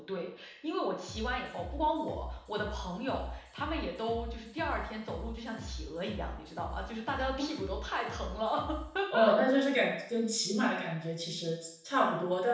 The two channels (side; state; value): both; identical; correlation 1.00